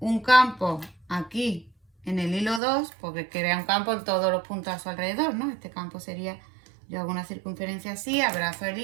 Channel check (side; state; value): left; drops out; at 2.6 s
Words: campo aquí en el hilo 2, porque crea un campo en todos los puntos a su alrededor, ¿no? Este campo sería, yo hago una circunferencia así, abrazo el